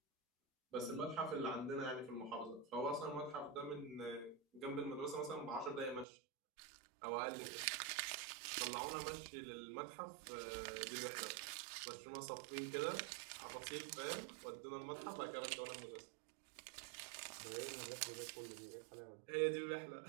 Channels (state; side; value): drops out; left; at 6.1 s